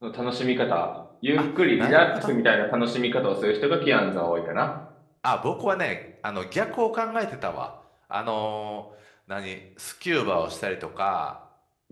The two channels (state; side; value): identical; both; correlation 1.00